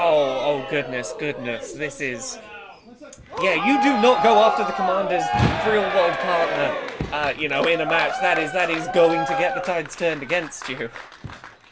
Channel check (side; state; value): both; identical; correlation 1.00